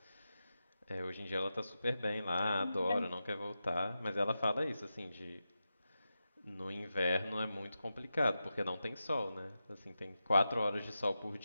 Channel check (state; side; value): inverted; both; correlation -0.90